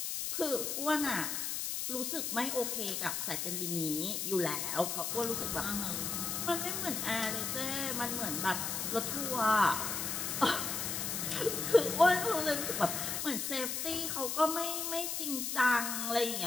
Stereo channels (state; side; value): noise; left; hiss, 2 dB below the sound